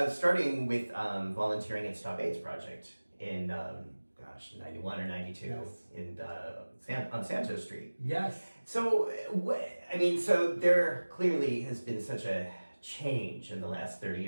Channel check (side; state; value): both; inverted; correlation -1.00